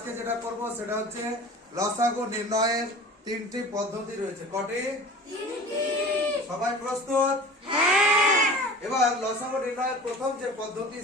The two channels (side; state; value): both; normal; correlation 0.38